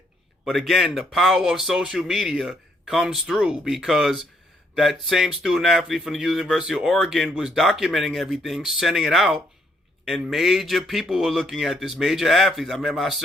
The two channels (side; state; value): both; normal; correlation 0.71